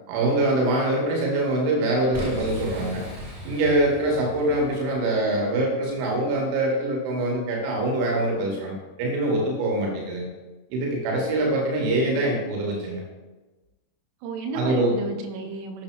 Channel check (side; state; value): left; late; 31 ms